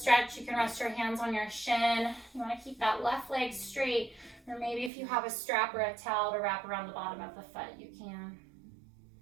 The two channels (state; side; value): drops out; left; at 4.9 s